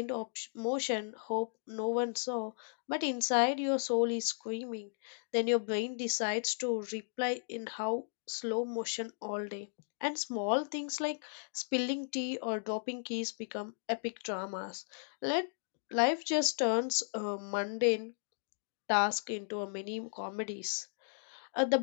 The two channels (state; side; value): silent; right; digital silence